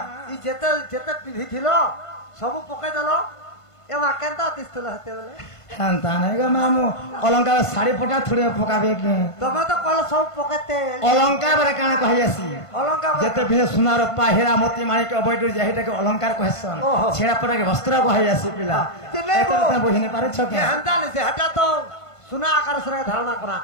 ই যেতে যেতে পিঁধিছিল সব পকাই দেল এবার কেনতা তিস্তুল হতে বলে হ্যাঁ তা নাই গো মামু অলঙ্কার শাড়ি ফোটা থুড়ে পকাবে কি তুমি তো কল সব পকাতে অলঙ্কার বলে কানে কহি আসি অলঙ্কার যেতে ভিনে সোনার রূপা হীরা মোতি মাণিক অবৈধ যেটাকে অলঙ্কার কহেছন ছেড়া পটাকে বস্ত্র কহি আসি পিলা এটা বুঝিনে পারছ কি হ্যাঁ সে হটা তো সোনা আকার সরে ধারণা করা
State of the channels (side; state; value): right; late; 1.5 ms